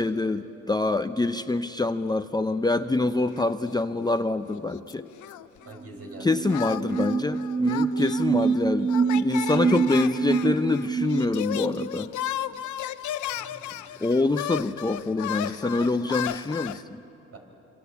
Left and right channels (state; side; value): normal; both; correlation 0.73